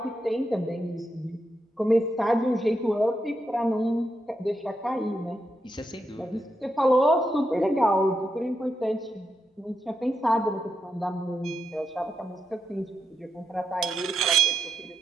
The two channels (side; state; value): both; normal; correlation 0.84